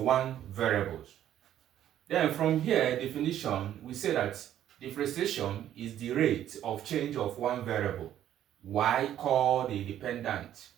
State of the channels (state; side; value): quieter; left; 11.4 dB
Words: variable. Then from here, definition, we say that differentiation is the rate of change of one variable, y called the dependent